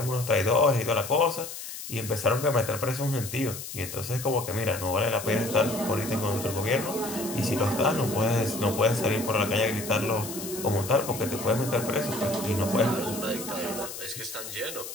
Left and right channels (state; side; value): noise; left; hiss, 9 dB below the sound